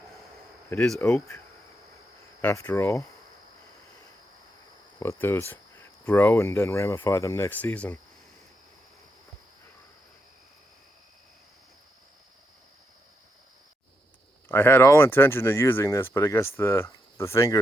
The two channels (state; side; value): normal; both; correlation 0.82